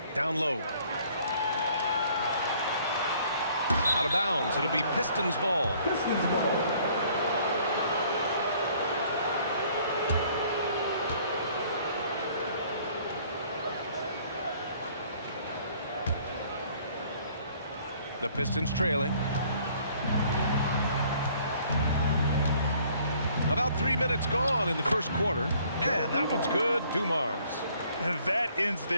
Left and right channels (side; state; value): both; inverted; correlation -0.59